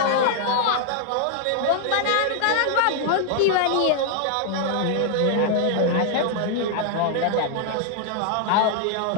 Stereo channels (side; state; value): both; different; correlation 0.00